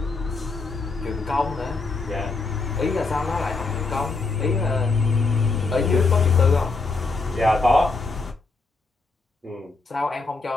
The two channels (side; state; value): right; quieter; 3.9 dB